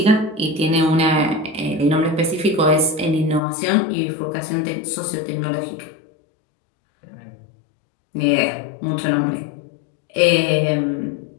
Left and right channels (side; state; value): right; drops out; at 3.4 s